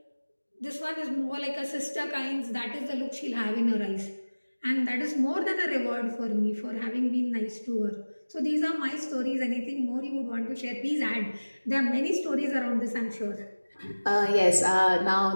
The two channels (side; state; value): both; inverted; correlation -1.00